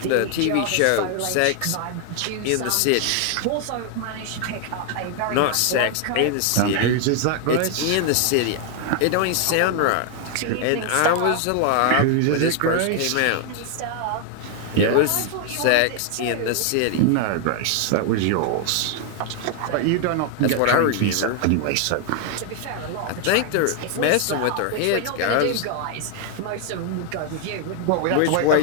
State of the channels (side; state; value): both; different; correlation 0.00